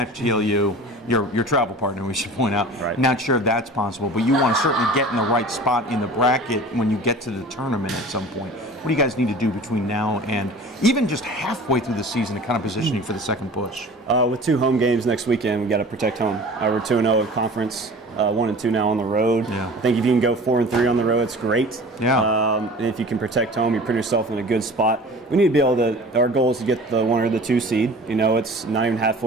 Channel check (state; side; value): normal; both; correlation 0.41